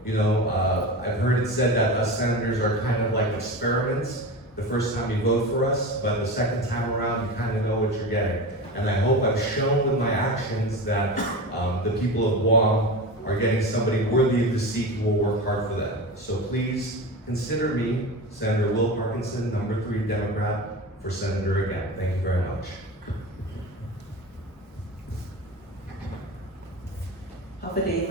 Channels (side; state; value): both; normal; correlation 0.27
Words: you know, I've heard it said that us senators are kind of like experiments. The first time you vote for us, but the second time around, you kind of know what you're getting. And I hope I've shown with my actions that the people of Guam are getting somebody worthy of the seat who will work hard for them. So please consider me, Senator Will Parkinson, number 3 Democrat, for Senator again. Thank you very much. Alpha Day,